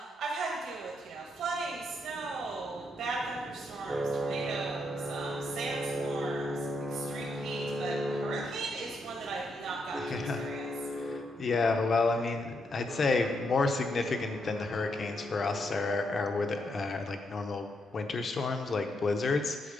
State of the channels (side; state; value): both; normal; correlation 0.79